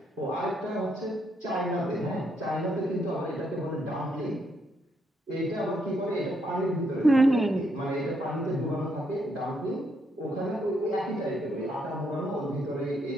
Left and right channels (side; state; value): both; normal; correlation 0.75